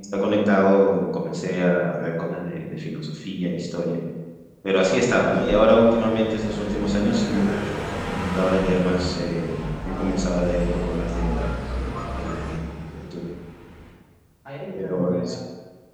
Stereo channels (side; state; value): both; identical; correlation 1.00